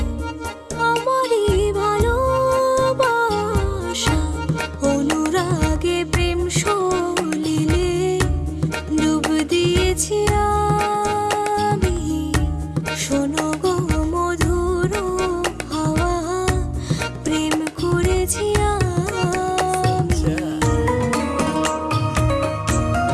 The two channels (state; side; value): identical; both; correlation 1.00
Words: আমারই ভালোবাসা, অনুরাগে প্রেম সলিলে ডুব দিয়েছি আমি। শোনো গো মধুর হাওয়া, প্রেম করেছি আমি।